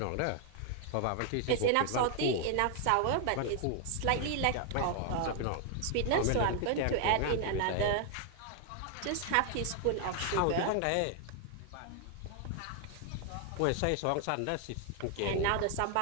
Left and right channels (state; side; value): different; both; correlation 0.00